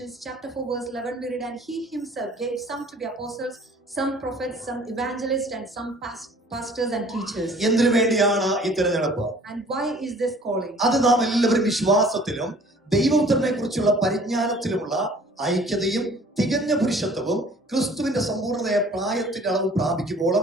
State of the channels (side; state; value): both; normal; correlation 0.52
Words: chapter 4 verse 11 we read, and he himself gave some to be apostles, some prophets, some evangelists and some pastors and teachers. എന്തിനു വേണ്ടിയാണ് ഈ തിരഞ്ഞെടുപ്പ്? And why is this calling? അത് നാം എല്ലാവരും വിശ്വാസത്തിലും ദൈവപുത്രനെ കുറിച്ചുള്ള പരിജ്ഞാനത്തിലുമുള്ള ഐക്യതയും തികഞ്ഞ പുരുഷത്വവും ക്രിസ്തുവിന്റെ സമ്പൂർണ്ണതയെ പ്രായത്തിന്റെ അളവ്